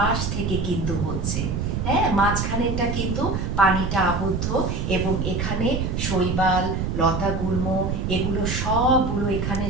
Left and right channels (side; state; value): right; noise; rumble, 1 dB below the sound